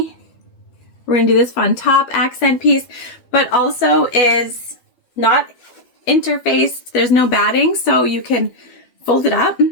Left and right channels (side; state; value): right; late; 12 ms